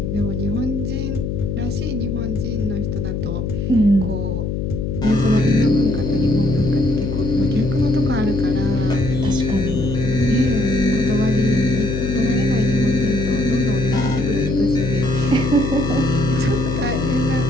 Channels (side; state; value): left; noise; hum, 2 dB below the sound